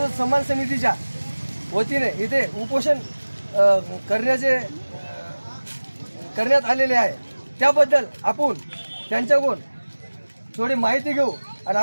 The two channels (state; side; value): inverted; both; correlation -1.00